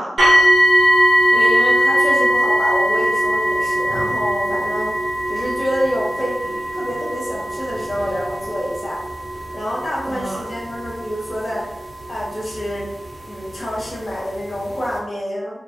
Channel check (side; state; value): both; normal; correlation 0.93